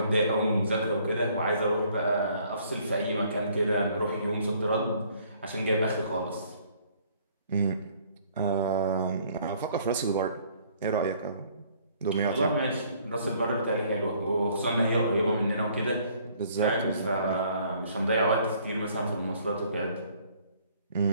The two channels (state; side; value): inverted; both; correlation -0.60